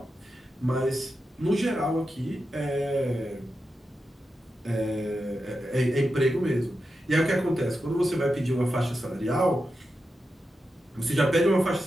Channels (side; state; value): both; normal; correlation 0.89